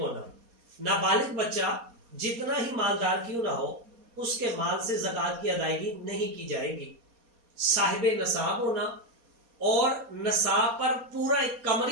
نابالغ بچہ جتنا ہی مالدار کیوں نہ ہو اس کے مال سے زکوٰۃ کی ادائیگی نہیں کی جائے گی۔ صاحب نصاب ہونا اور نصاب پر پورا ایک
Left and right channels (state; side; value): late; left; 4.2 ms